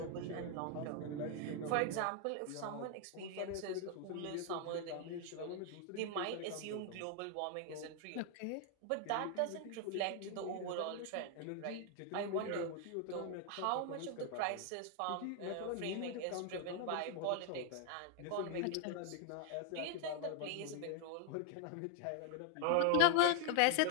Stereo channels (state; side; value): different; both; correlation 0.00